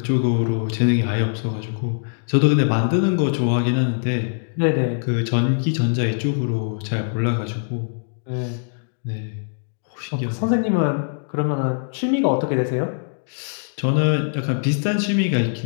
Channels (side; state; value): right; silent; digital silence